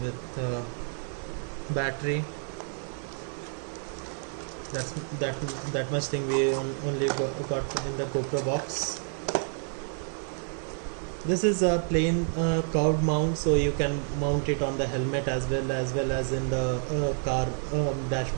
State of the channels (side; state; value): left; silent; 58 dB below the other